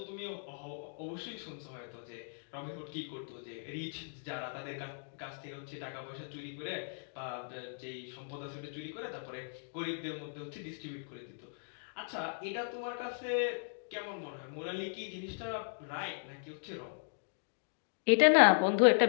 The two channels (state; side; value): silent; right; digital silence